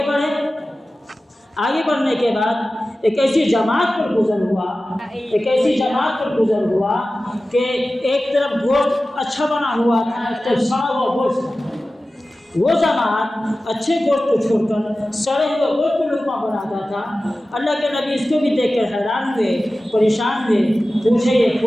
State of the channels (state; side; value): normal; both; correlation 0.95